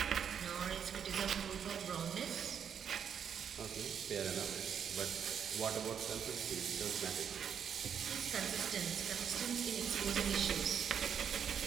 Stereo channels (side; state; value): left; quieter; 7.9 dB